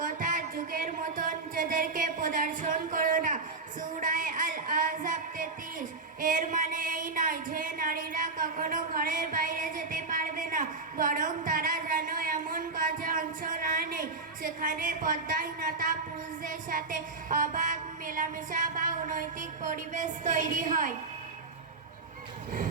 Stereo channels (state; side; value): quieter; left; 3.8 dB